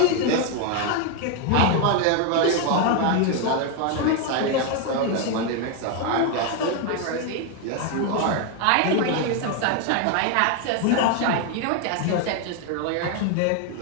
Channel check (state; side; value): different; both; correlation 0.01